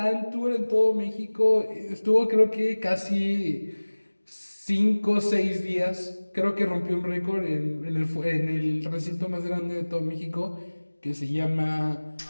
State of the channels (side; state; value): both; inverted; correlation -1.00